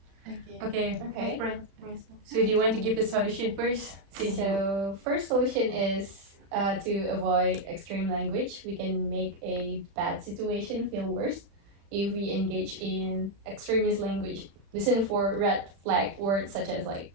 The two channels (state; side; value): late; left; 35 ms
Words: Okay. Okay. So do you want to give the solution first? Since you. So first solution is to avoid extreme language. We can make a bad situation feel worse if we engage in extremist language. Listen for red flag words such as like